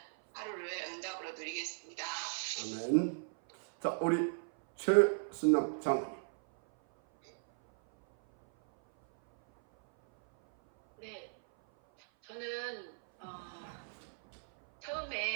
하루를 응답으로 누리겠습니다. 아멘. 자, 우리 최순남 장로님. 네, 저는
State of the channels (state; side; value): silent; left; 54 dB below the other